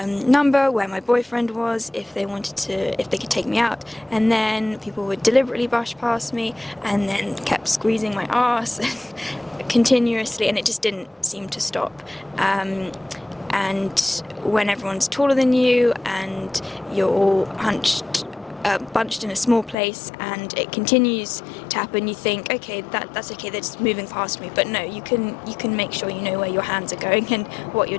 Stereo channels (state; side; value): drops out; right; at 19.8 s